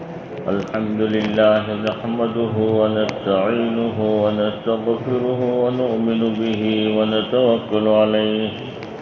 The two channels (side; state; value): both; identical; correlation 1.00